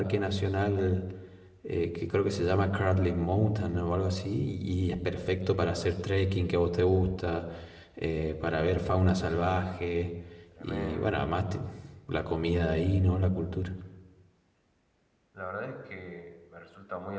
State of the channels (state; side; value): identical; both; correlation 1.00